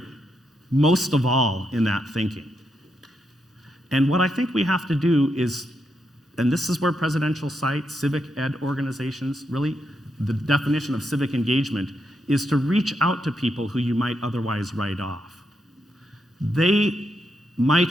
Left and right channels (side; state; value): both; normal; correlation 0.82